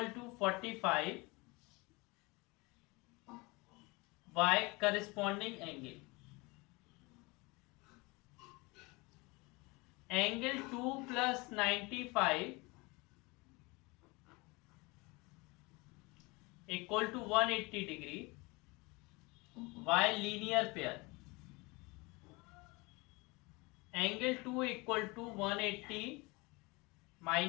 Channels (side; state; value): right; quieter; 25.5 dB